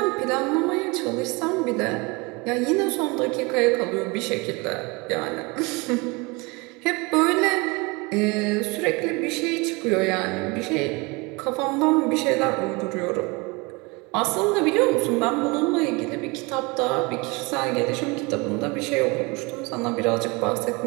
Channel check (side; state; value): left; quieter; 26.7 dB